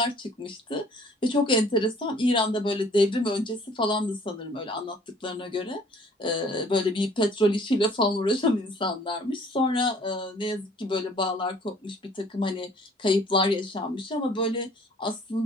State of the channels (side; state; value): both; normal; correlation 0.55